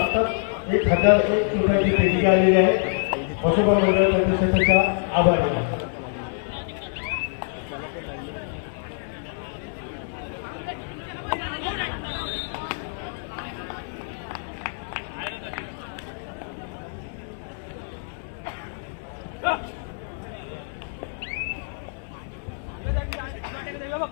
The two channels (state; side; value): silent; right; digital silence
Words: 1001 रुपयाची देणगी आलेली आहे. वसुबा मंडळ प्रतिष्ठानचा आभारी आहे.